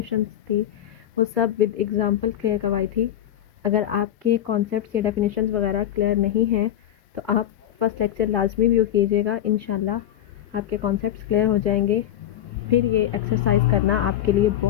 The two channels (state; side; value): quieter; right; 11.5 dB